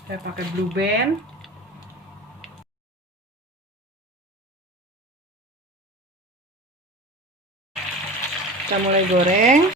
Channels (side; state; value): both; normal; correlation 0.34